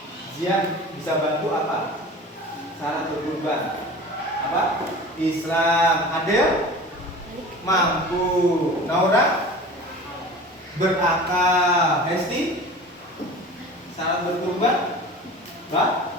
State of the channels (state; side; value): normal; both; correlation 0.38